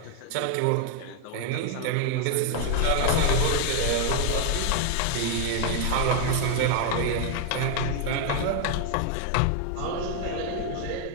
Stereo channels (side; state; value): both; different; correlation 0.00